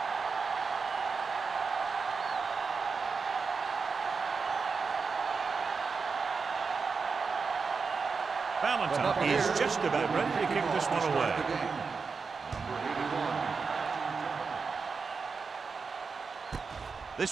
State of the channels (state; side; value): quieter; left; 5.0 dB